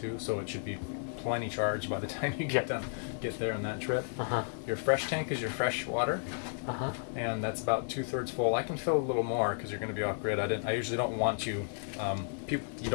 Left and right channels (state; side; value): silent; right; digital silence